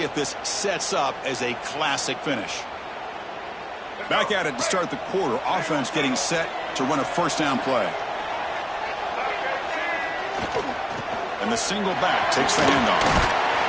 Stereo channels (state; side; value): identical; both; correlation 1.00